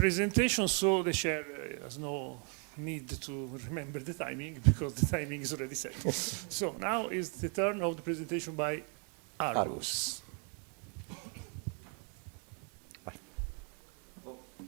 so the chair has no need to remember the timing because the timing is already set. So now is the turn of the presentation by Argus.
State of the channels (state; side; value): quieter; left; 39.2 dB